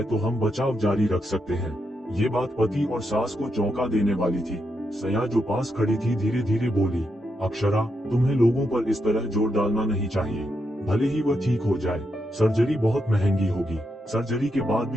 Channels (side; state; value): both; normal; correlation 0.83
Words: तो हम बचाव जारी रख सकते हैं। ये बात पति और सास को चौंका देने वाली थी। सया जो पास खड़ी थी धीरे धीरे बोली, अक्षरा, तुम्हें लोगों पर इस तरह जोर डालना नहीं चाहिए। भले ही वह ठीक हो जाए, सर्जरी बहुत महंगी होगी। सर्जरी के बाद